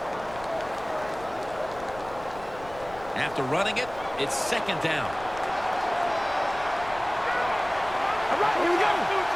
After running it, it's second down. All right, here we go.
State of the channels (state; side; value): noise; left; rumble, 18 dB below the sound